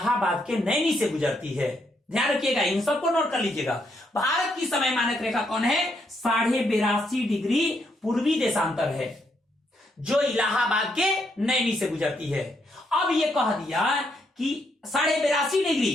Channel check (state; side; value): normal; both; correlation 0.76